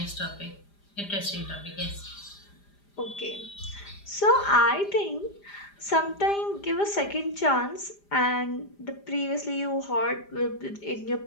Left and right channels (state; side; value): late; right; 5.0 ms